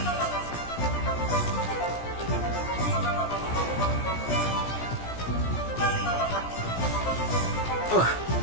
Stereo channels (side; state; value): right; late; 17 ms